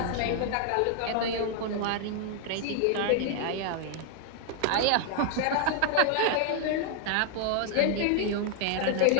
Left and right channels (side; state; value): both; different; correlation 0.00